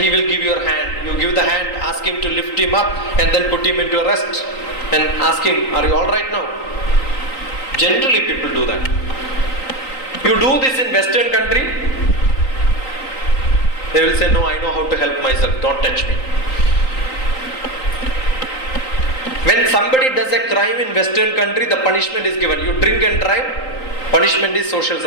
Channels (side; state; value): right; late; 3.9 ms